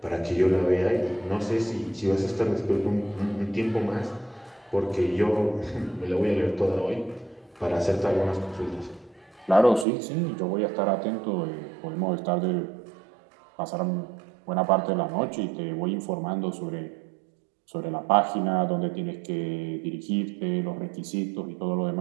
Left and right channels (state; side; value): drops out; left; at 9.9 s